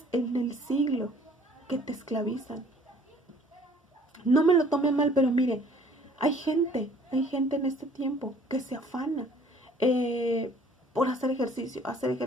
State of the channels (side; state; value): both; normal; correlation 0.56